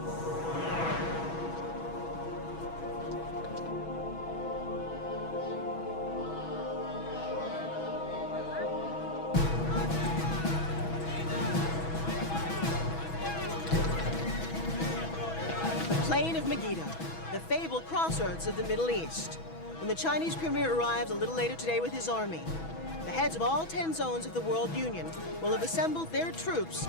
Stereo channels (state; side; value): late; right; 6.1 ms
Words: plain of Megiddo, the fabled crossroads of the Middle East. When the Chinese premier arrives a little later today with his army, the heads of all 10 zones of the World Union will have assembled their troops